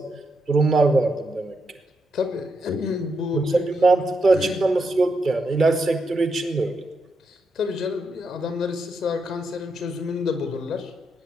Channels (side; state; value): both; normal; correlation 0.82